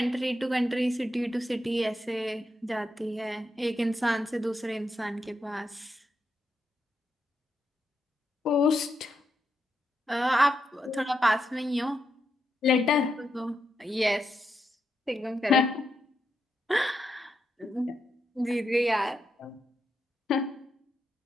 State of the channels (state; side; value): normal; both; correlation 0.84